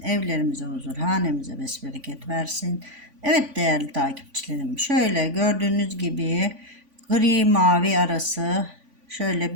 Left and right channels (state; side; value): late; left; 3.5 ms